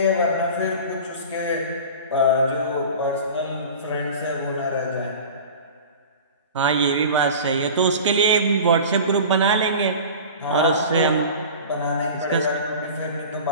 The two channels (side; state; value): both; inverted; correlation -0.37